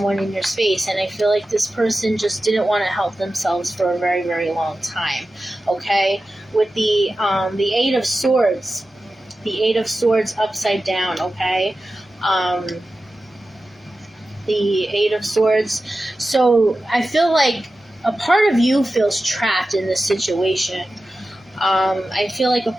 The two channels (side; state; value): both; normal; correlation 0.93